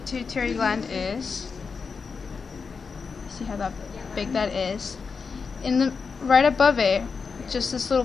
gland is. See how big that is. Right above it, just this little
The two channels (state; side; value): quieter; right; 5.2 dB